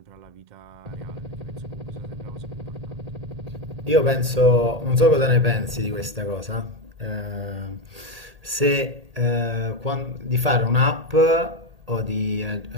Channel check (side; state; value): left; late; 1.8 ms